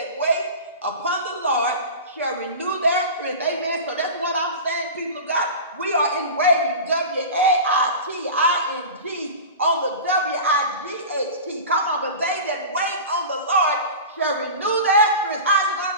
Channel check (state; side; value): inverted; both; correlation -0.32